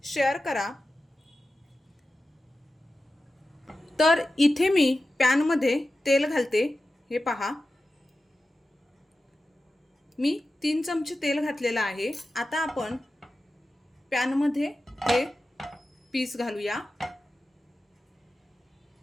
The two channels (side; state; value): both; normal; correlation 0.93